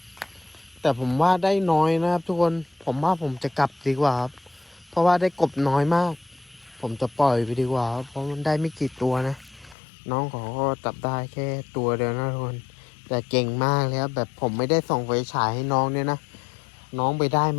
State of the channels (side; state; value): right; drops out; at 9.8 s